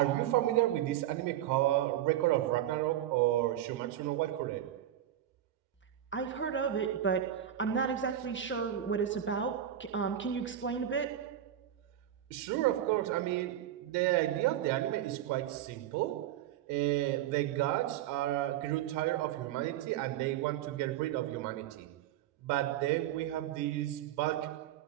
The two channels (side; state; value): left; quieter; 11.5 dB